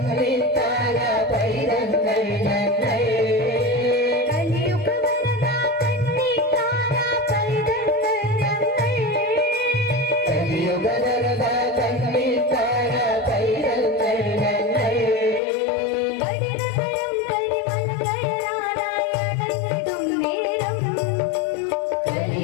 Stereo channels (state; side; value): drops out; right; at 15.4 s